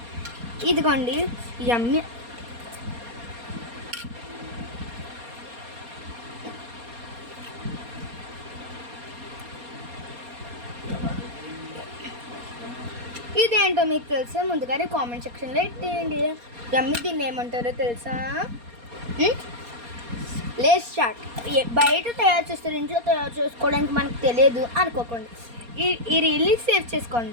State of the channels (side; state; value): left; late; 4.2 ms